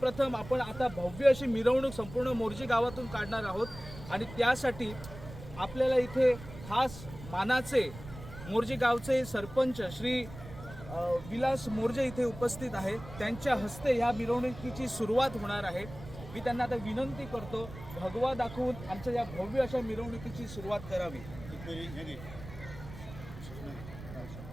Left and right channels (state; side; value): noise; right; rumble, 14 dB below the sound